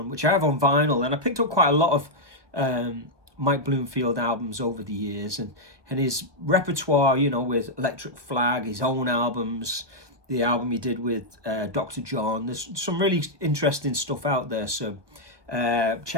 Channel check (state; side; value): late; left; 1.2 ms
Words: which I have on vinyl. And I picked up quite a lot of Mike Bloomfield albums over the years. And his repertoire, with Electric Flag, his own albums, the album he did with Dr. John. There's some really interesting stuff out there, so